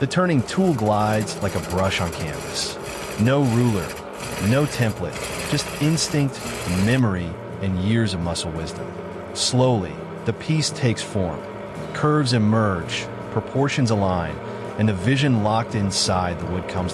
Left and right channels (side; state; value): both; identical; correlation 1.00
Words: The turning tool glides like a brush on canvas. No ruler, no template, just instinct, memory, and years of muscle wisdom. Slowly, the piece takes form. Curves emerge, proportions align, and the vision locked inside the wood comes